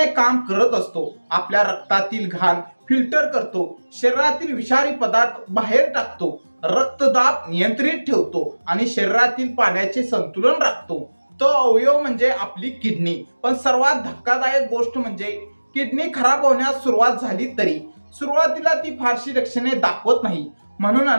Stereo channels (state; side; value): inverted; both; correlation -1.00